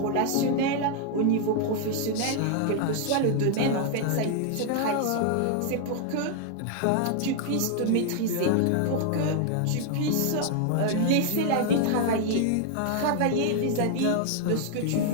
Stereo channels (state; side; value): different; both; correlation 0.00